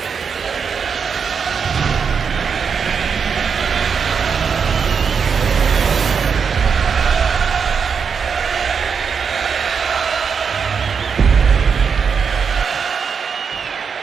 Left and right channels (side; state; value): left; quieter; 6.2 dB